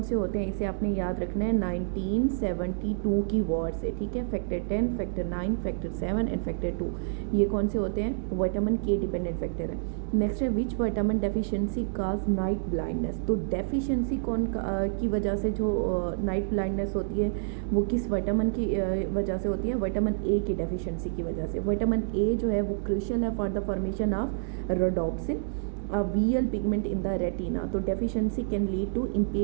से होते हैं, इसे आपने याद रखना है 1972 की वॉर से, ठीक है। Factor 10, factor 9, factor 7 and factor 2, ये कौन से होते हैं? विटामिन के डिपेंडेंट फैक्टर है। नेक्स्ट है which vitamin deficiency cause night blindness, तो डेफिशिएंसी की वजह से जो नाइट ब्लाइंडनेस होती है वो किस विटामिन की वजह से होती है? विटामिन ए की डेफिशिएंसी की वजह से। विटामिन ए जो है वो क्रूशियल है for the formation of rhodopsin, VL pigment in the retina, तो deficiency can lead to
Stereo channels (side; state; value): left; silent; digital silence